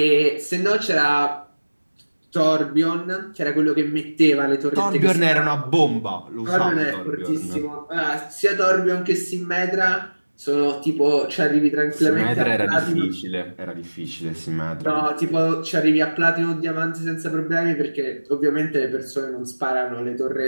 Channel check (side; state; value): both; inverted; correlation -1.00